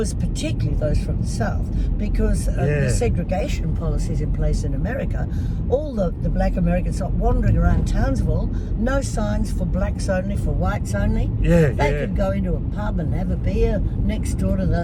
particularly those from the South, because of the segregation policies in place in America, all the black Americans are wandering around Townsville, no signs for blacks only, for whites only. Yeah, They yeah. could go into a pub and have a beer next door to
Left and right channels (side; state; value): both; identical; correlation 1.00